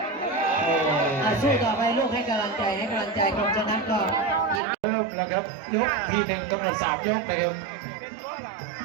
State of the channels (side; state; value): left; drops out; at 4.6 s